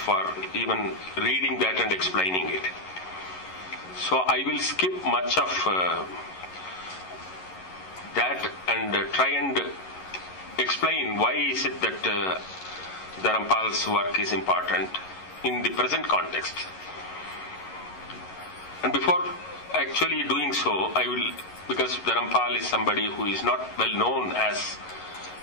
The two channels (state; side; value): late; right; 11 ms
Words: even reading that and explaining it. So I will skip much of that and try and explain why is it that Dharampal's work is important in the present context. And before actually doing so, I will, because Dharampal is somebody who is not well known as